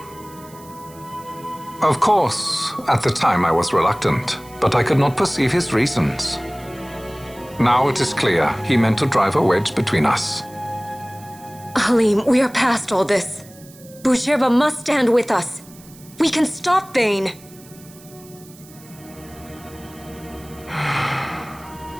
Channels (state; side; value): noise; right; hiss, 23 dB below the sound